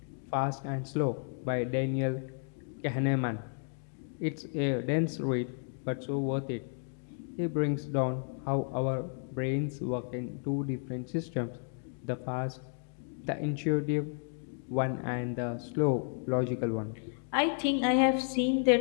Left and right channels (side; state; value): right; silent; 56 dB below the other